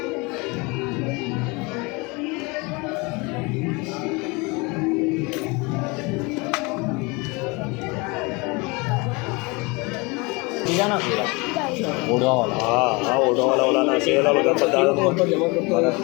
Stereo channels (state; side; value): quieter; right; 27.1 dB